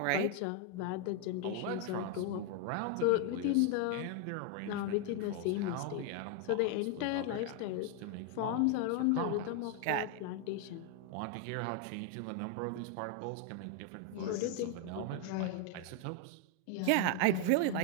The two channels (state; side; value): different; both; correlation 0.01